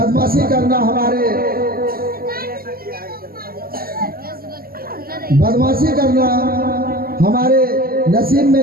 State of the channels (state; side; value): late; left; 0.43 ms